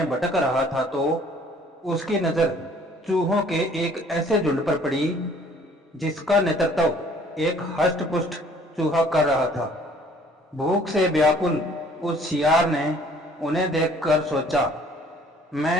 भटक रहा था तो उसकी नज़र चूहों के एक ऐसे झुंड पर पड़ी जिसका नेतृत्व एक हष्ट-पुष्ट चूहा कर रहा था। भूख से व्याकुल उस सियार ने उन्हें देखकर सोचा,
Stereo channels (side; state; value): both; normal; correlation 0.56